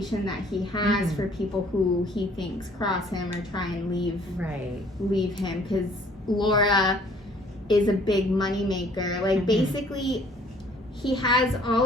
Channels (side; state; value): both; normal; correlation 0.58